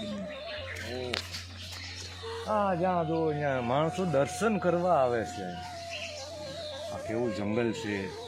હા, જ્યાં જો ત્યાં માણસો દર્શન કરવા આવે છે. આ કેવું જંગલ છે,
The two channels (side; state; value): both; identical; correlation 1.00